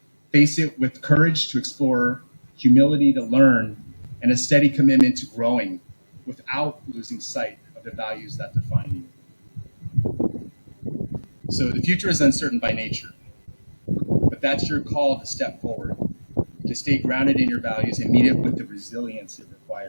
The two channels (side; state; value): both; inverted; correlation -1.00